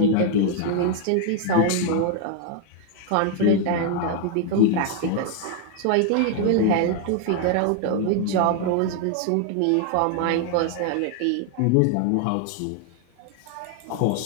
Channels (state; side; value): different; both; correlation 0.00